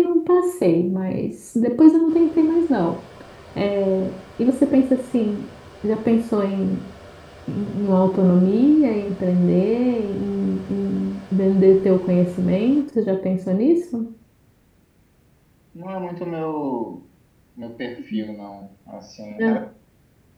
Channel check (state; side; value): identical; both; correlation 1.00